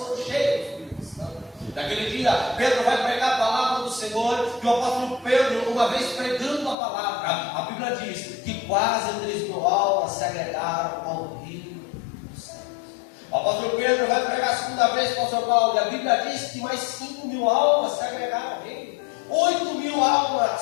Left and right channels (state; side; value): drops out; right; at 6.8 s